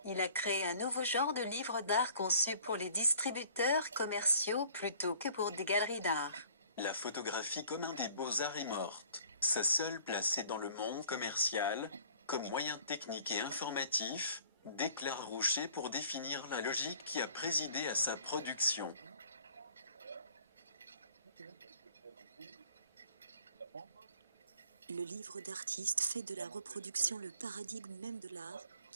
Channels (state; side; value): inverted; both; correlation -0.54